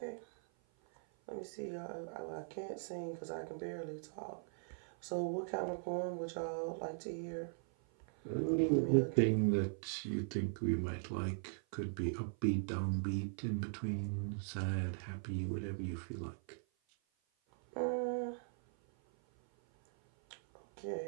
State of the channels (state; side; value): silent; left; 51 dB below the other